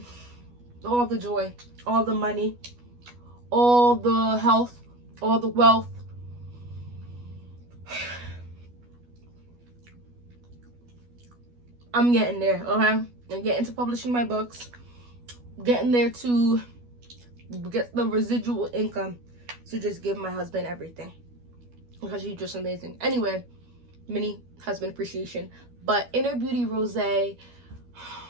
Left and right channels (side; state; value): left; late; 12 ms